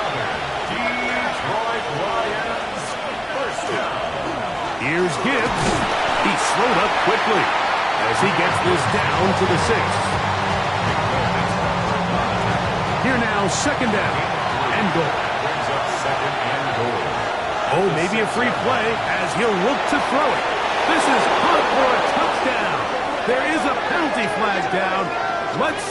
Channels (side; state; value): both; identical; correlation 1.00